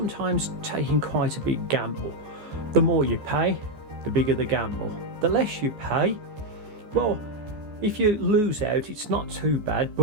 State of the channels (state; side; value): late; left; 14 ms